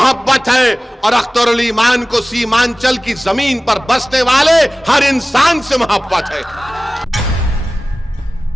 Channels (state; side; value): normal; both; correlation 0.97